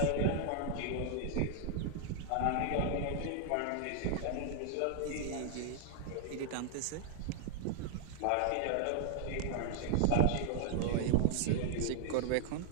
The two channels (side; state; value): both; different; correlation 0.00